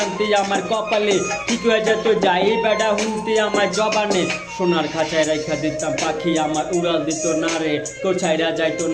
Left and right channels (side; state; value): both; identical; correlation 1.00